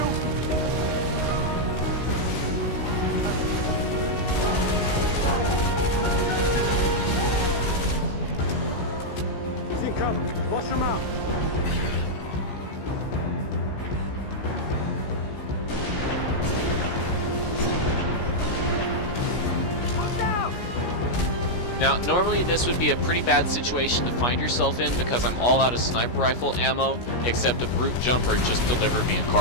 He's in cover. Flush him out. Now, normally this would be a pretty bad situation to find yourself in because I'm all out of sniper rifle ammo, except a brute jumper just delivered me a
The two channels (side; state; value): right; late; 17 ms